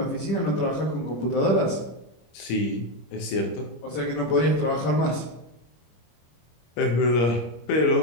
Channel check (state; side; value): late; right; 26 ms